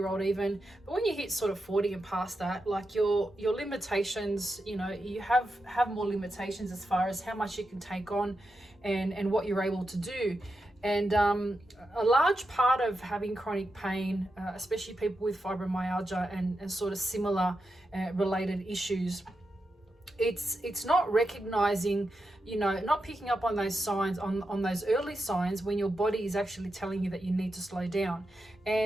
even. But when you hit sort of 40 and past that, like your limitations, you know, you have more limitations as far as how much you can take on and what you're able to do. And a large part of having chronic pain, especially people with fibromyalgia and sort of similar related issues, it's not recognizing, you know, not picking up on those signs, on those early signs when your body is actually telling you that you need to slow down.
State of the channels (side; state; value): both; normal; correlation 0.88